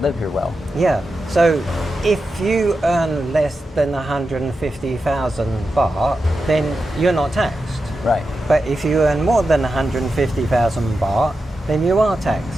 here well. Yeah. So if you earn less than 150,000 baht, then you're not taxed. Right. But if you earn more than 150,000 baht, then you are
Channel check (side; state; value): both; normal; correlation 0.90